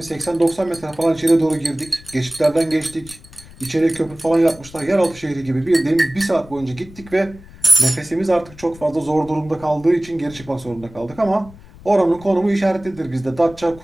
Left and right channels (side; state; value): left; noise; rumble, 20 dB below the sound